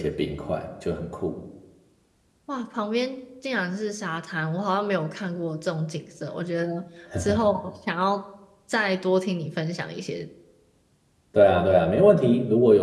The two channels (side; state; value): both; identical; correlation 1.00